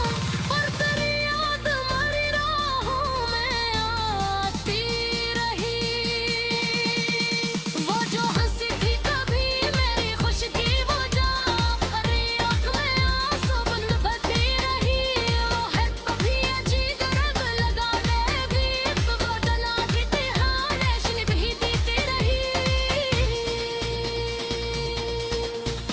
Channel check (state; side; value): identical; both; correlation 1.00